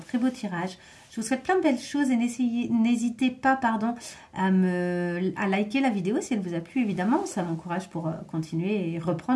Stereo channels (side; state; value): both; identical; correlation 1.00